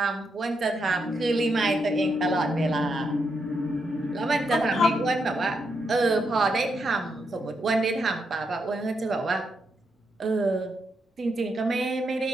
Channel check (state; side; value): normal; both; correlation 0.81